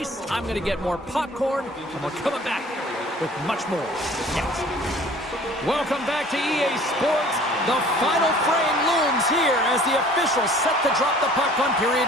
I'm going to get more popcorn, and we're coming back with much more next. Welcome back to EA Sports. The final frame looms here as the officials set to drop the puck on period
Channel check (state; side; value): normal; both; correlation 0.50